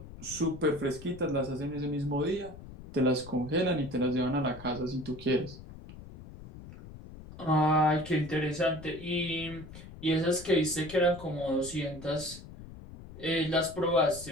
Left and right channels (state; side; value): noise; left; rumble, 15 dB below the sound